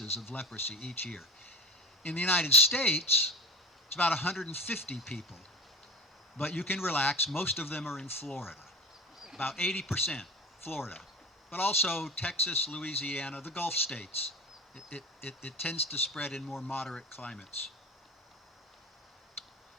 of leprosy each year. In the United States, it's about 150 people. But you can relax, most of them are in Florida. About 80% Florida. But also Texas, Louisiana, the Gulf states. It tends to spread in more moderate climates.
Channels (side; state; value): both; normal; correlation 0.32